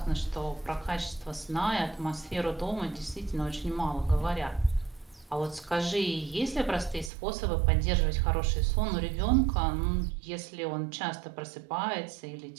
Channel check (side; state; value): left; drops out; at 7.1 s